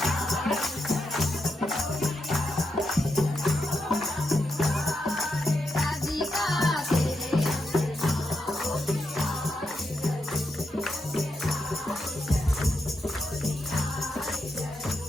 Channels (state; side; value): normal; both; correlation 0.83